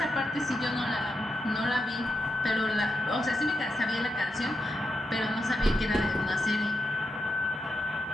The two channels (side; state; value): both; normal; correlation 0.85